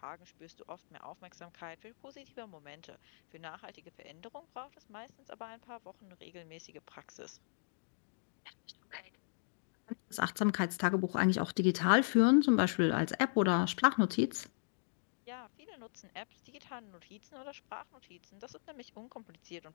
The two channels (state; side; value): silent; right; digital silence